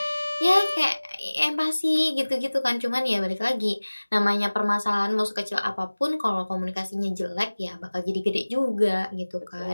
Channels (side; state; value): both; inverted; correlation -1.00